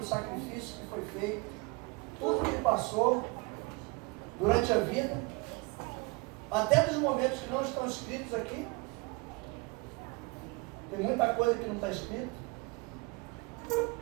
sacrifício que foi feito, tudo que ele passou durante a vida, até dos momentos que não estão escritos aqui. Tem muita coisa que não está escrito,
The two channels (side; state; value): left; quieter; 26.9 dB